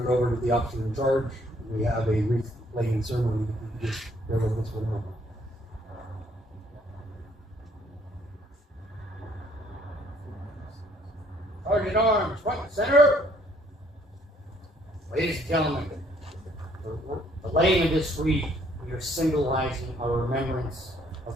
it over to the officer in charge. We have a wreath laying ceremony. If you just bear with us for a moment. Sergeant Arms, front and center. Ladies and gentlemen, the laying of this wreath, we are symbolizing our remembrance of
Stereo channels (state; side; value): normal; both; correlation 0.64